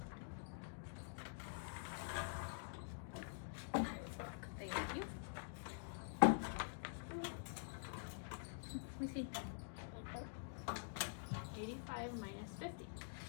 Thank you. Let me see. 85 minus 50.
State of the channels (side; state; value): right; silent; digital silence